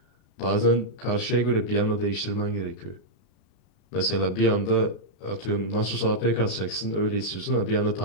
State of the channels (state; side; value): late; right; 32 ms